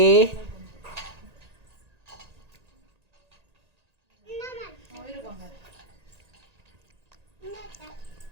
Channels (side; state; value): left; late; 1.9 ms